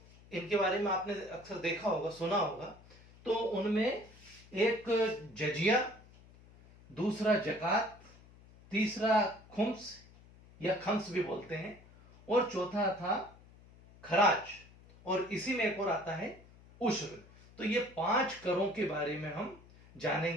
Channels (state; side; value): noise; left; hum, 23 dB below the sound